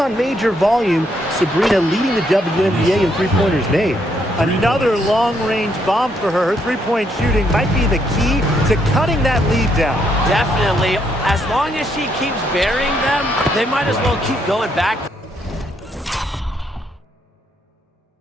major volume. Sabrina leading the WNBA in three-pointers made. Another long-range bomb for her. Her three-point shooting might be the key to cutting that lead down. Definitely. As long as she keeps burying them, they might as well keep going back.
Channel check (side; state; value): both; normal; correlation 0.74